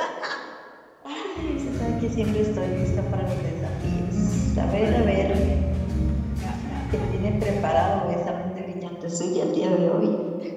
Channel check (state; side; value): identical; both; correlation 1.00